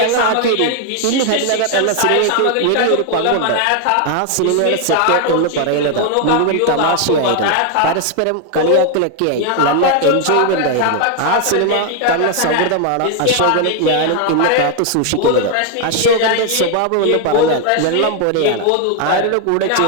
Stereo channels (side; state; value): both; different; correlation 0.00